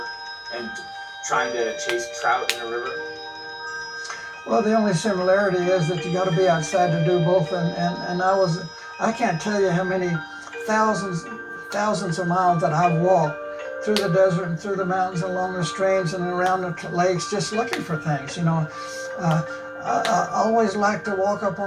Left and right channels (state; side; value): identical; both; correlation 1.00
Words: and trying to chase trout in a river? Well, the only similarity is that you got to be outside to do both, and I can't tell you how many thousands of miles that I've walked through the desert and through the mountains and along the streams and around the lakes just looking for things. I always like to walk up